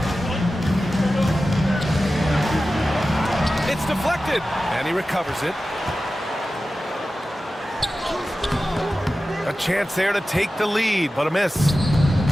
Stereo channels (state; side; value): normal; both; correlation 0.94